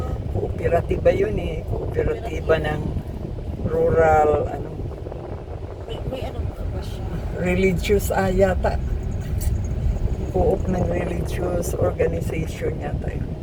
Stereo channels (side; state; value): both; identical; correlation 1.00